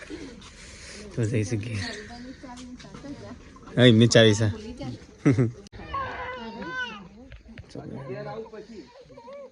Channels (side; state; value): both; identical; correlation 1.00